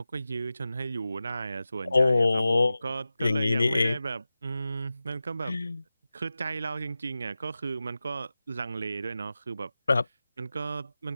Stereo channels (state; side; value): inverted; both; correlation -0.94